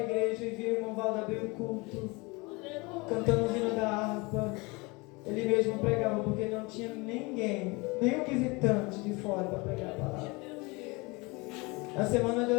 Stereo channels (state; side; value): quieter; right; 26.1 dB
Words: e via o irmão Valdo abrir o culto, cantando o hino da harpa. Ele mesmo pregava porque não tinha ninguém, nenhum visitante de fora para pregar a palavra. Na semana de